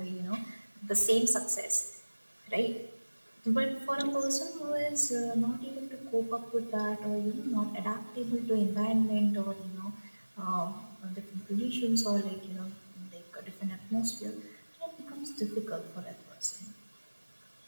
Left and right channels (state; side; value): inverted; both; correlation -1.00